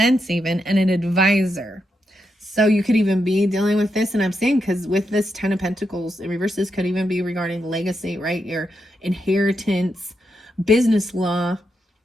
even, and an advisor. So you could even be dealing with this. And I'm saying, because with this 10 of Pentacles in reverse, this could even be regarding legacy, right? Your inheritance, business law,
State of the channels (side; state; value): both; normal; correlation 0.84